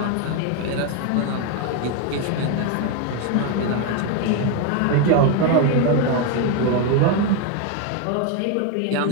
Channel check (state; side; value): different; both; correlation 0.02